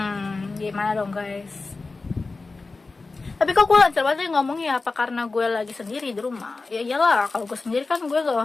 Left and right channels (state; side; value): quieter; right; 3.8 dB